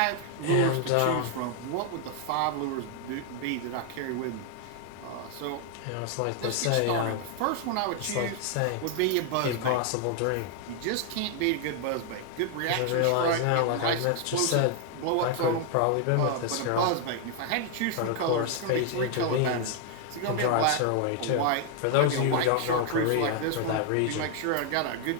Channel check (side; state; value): both; different; correlation 0.00